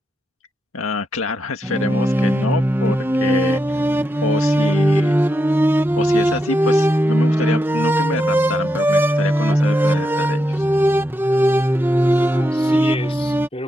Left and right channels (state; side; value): normal; both; correlation 0.85